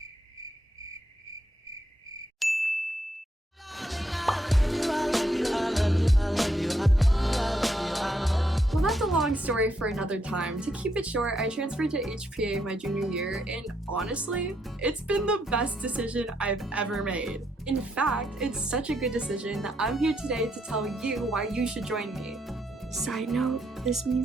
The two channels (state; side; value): normal; both; correlation 0.76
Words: Well, that's a long story for another time. To keep it short, I transferred to HPA my junior year, and honestly, it's been the best decision I've ever made. In fact, it's such a good decision that I'm here today to tell you why you should join me. Side note, this